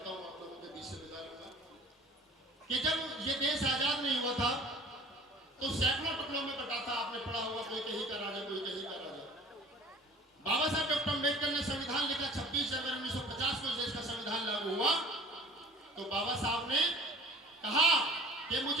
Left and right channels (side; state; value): both; normal; correlation 0.46